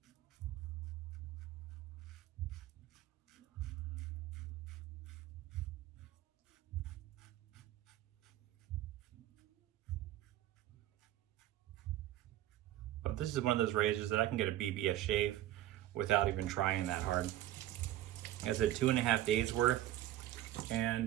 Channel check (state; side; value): quieter; left; 14.1 dB